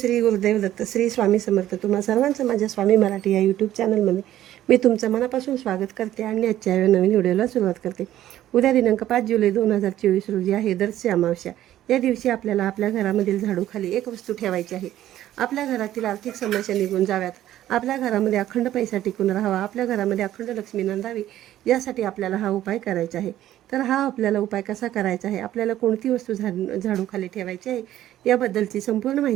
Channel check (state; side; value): quieter; left; 13.0 dB